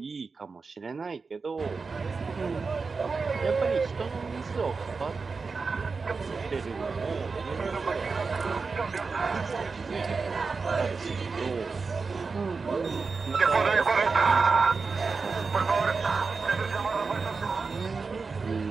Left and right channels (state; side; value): quieter; left; 4.6 dB